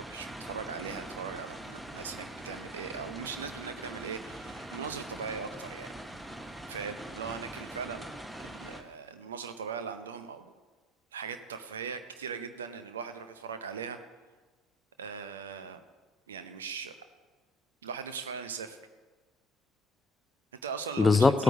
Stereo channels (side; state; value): both; normal; correlation 0.55